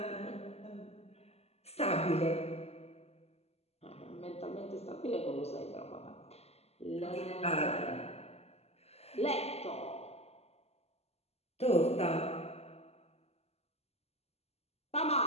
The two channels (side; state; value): right; late; 0.30 ms